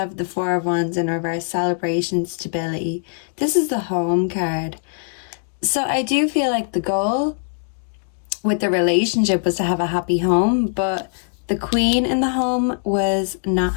the Four of Wands in reverse, celebration, stability. This is the home card. So I do feel like the goal with the relationship was to have a happy home, but the Queen in the home was not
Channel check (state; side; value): silent; right; digital silence